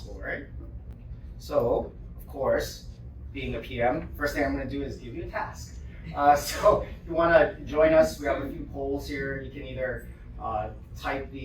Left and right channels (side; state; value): both; identical; correlation 1.00